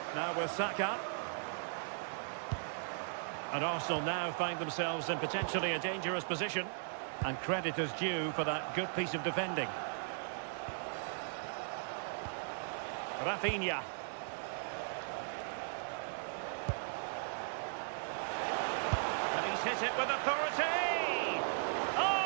Now with Saka. And Arsenal now find themselves in potentially a dangerous position. And credit is due for that good piece of defending. Rafinha. And he's hit it with authority.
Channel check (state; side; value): silent; left; digital silence